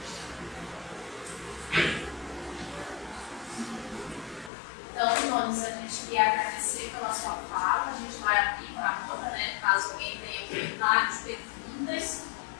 Então, Nunes, a gente queria agradecer pela sua fala. A gente vai abrir para a roda, né? Caso alguém tenha comentários, perguntas.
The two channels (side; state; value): right; drops out; at 4.5 s